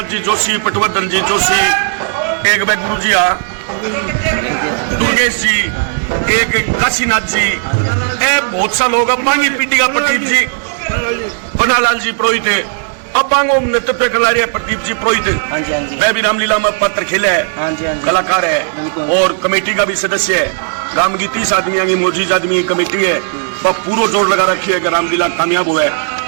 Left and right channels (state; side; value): silent; left; digital silence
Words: जी जोशी, पटवर्धन जी जोशी, एक गुरु जी दुर्गेश जी, एक काशीनाथ जी, बहुत सा लोग बांगी पीढ़ी का प्रदीप जी, पन्नालाल जी पुरोहित है, अब बांगो नेतृत्व कर रहे प्रदीप जी पुरोहित, वह भी रामलीला में पात्र खेले है, कलाकार है और कमेटी का भी सदस्य है। राम की 30 आदमी की मौजूद आदमी की कमेटी है, वह पूरा जोर लगा रखी है कि रामलीला कामयाब हुआ है।